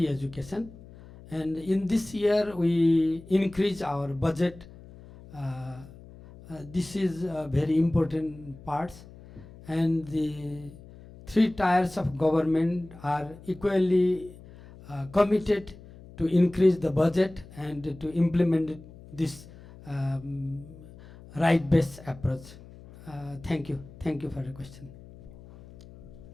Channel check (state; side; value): noise; left; hum, 19 dB below the sound